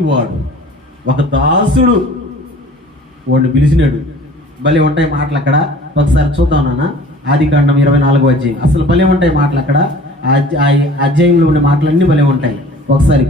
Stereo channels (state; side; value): normal; both; correlation 0.47